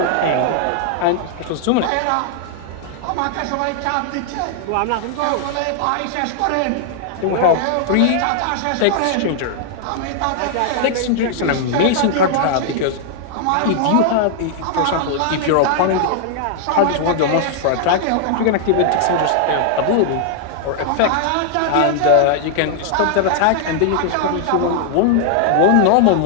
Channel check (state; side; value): different; both; correlation -0.01